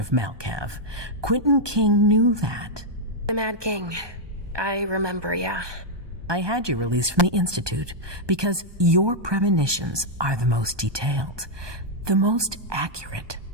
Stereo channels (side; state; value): left; late; 1.2 ms